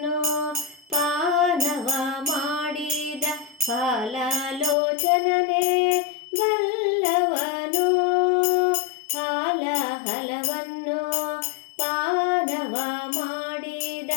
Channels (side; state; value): right; drops out; at 4.8 s